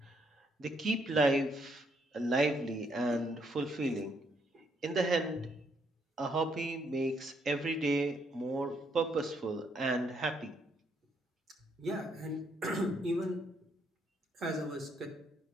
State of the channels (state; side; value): normal; both; correlation 0.72